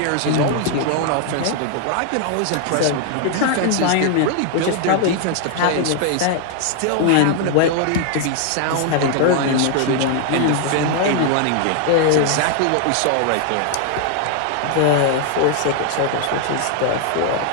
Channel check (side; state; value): both; different; correlation 0.00